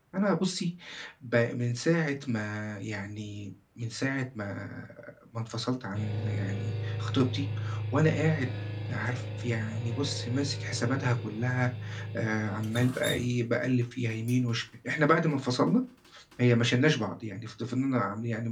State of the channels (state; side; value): identical; both; correlation 1.00